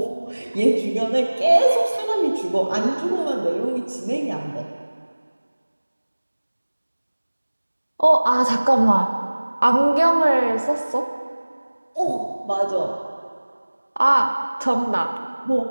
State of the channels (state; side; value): inverted; both; correlation -1.00